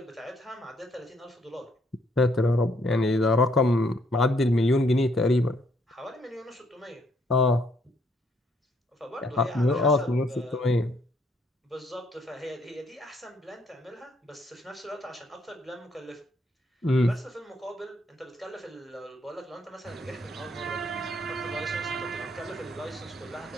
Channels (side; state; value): both; normal; correlation 0.69